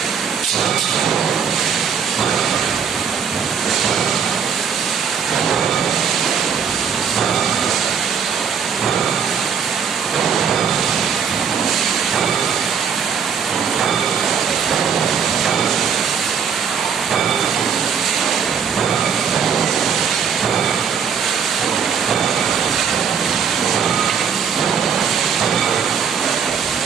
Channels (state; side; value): quieter; left; 7.0 dB